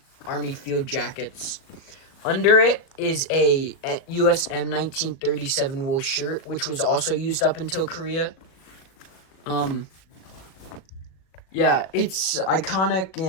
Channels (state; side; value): late; right; 37 ms